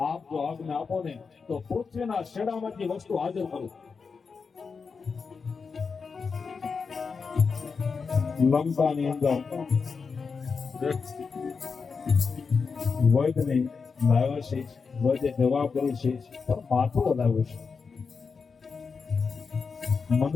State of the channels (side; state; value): right; quieter; 5.2 dB